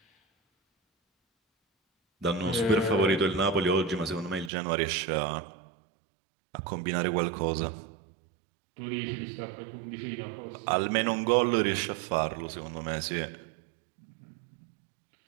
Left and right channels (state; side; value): drops out; left; at 4.5 s